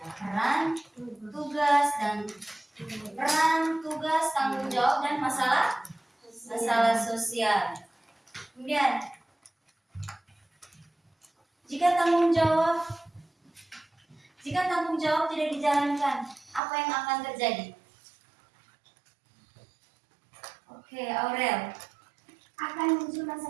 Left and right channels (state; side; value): drops out; left; at 16.6 s